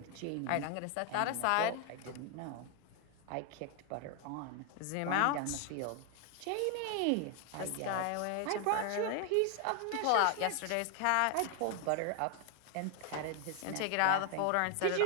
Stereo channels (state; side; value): different; both; correlation 0.00